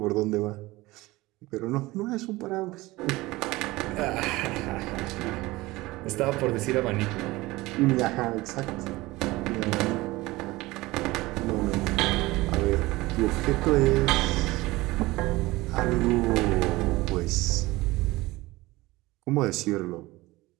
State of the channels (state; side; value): quieter; left; 20.0 dB